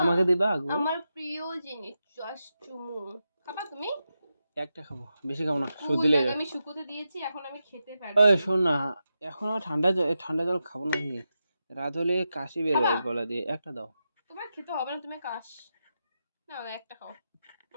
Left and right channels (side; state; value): both; inverted; correlation -0.88